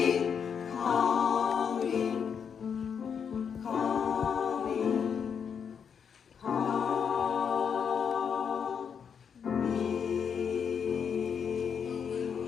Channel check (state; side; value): quieter; right; 7.0 dB